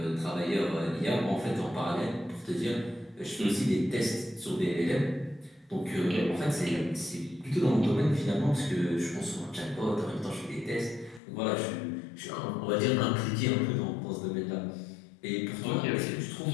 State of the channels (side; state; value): right; drops out; at 11.2 s